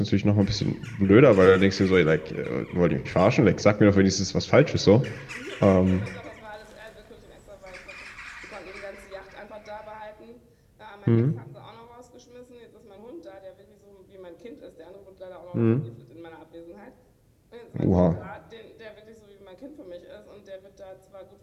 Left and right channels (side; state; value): both; identical; correlation 1.00